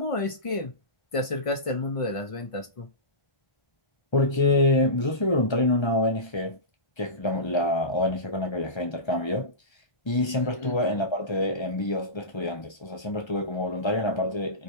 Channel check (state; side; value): late; right; 1.3 ms